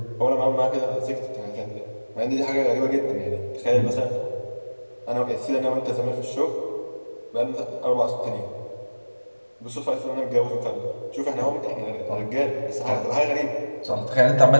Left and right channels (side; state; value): both; inverted; correlation -1.00